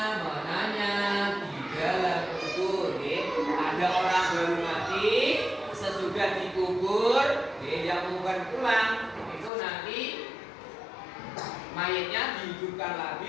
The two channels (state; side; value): drops out; right; at 9.5 s